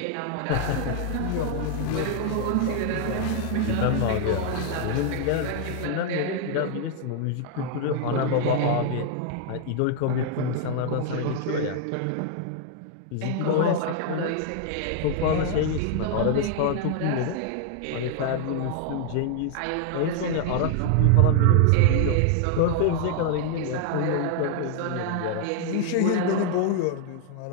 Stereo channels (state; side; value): different; both; correlation 0.00